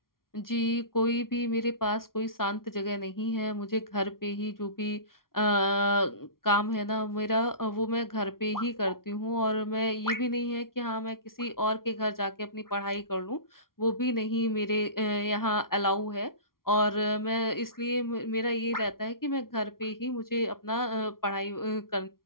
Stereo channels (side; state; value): right; late; 0.92 ms